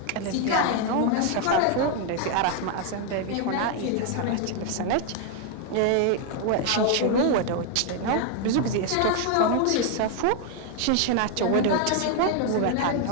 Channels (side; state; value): both; different; correlation 0.00